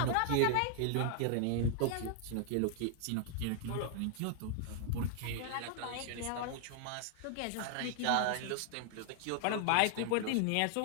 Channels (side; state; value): both; different; correlation 0.00